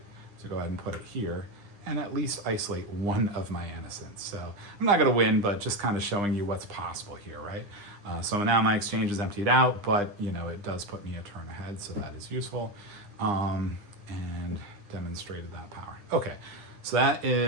to go ahead and put it here and at least isolate one of my innocents. So I'm not going to win, but just kind of showing you what's possible here, right? So now my exchange is emptied out, but it does put me a turn ahead, so that is useful. And demonstrated that power. Okay, so that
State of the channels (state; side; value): late; left; 9.9 ms